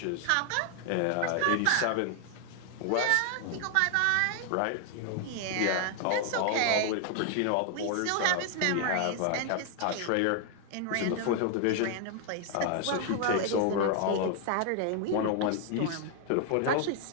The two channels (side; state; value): both; different; correlation 0.00